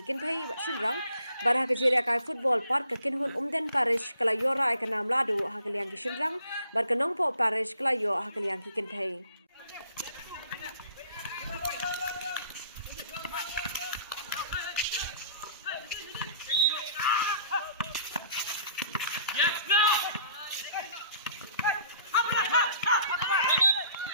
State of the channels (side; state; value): both; inverted; correlation -0.55